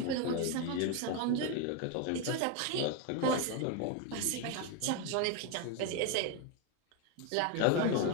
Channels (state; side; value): different; both; correlation 0.02